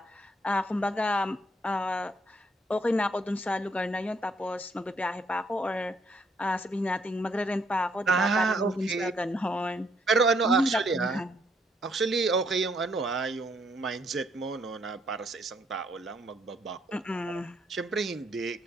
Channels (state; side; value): normal; both; correlation 0.70